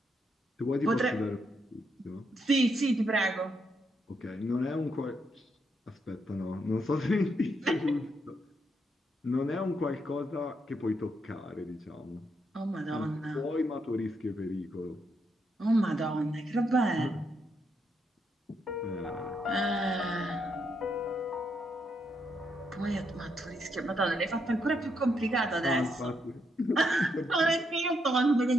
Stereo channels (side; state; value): both; normal; correlation 0.78